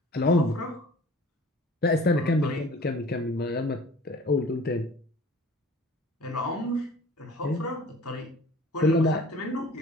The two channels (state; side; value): normal; both; correlation 0.47